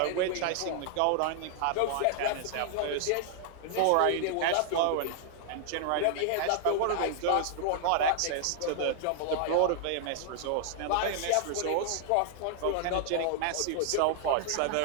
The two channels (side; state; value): both; different; correlation -0.01